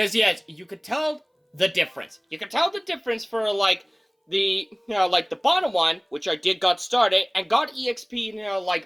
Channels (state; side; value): identical; both; correlation 1.00